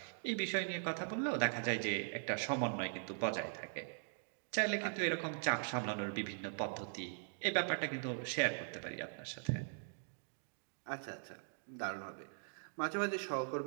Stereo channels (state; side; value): silent; left; digital silence